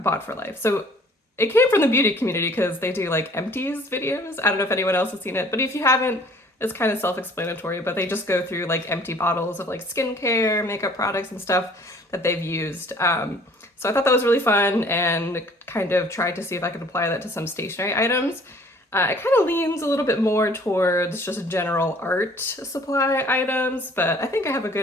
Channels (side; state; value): both; normal; correlation 0.54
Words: for life. So it came from the beauty community because they do like Empties videos. I don't know if anyone else has seen it, but if you haven't, it's kind of self-explanatory, but they just go through like empty bottles of like skincare, makeup products and stuff that they've used. So I thought that was really fun and kind of tried to see if I could apply that to some stationery items. It kind of leans a little bit more towards just general art supply items, but I think I have a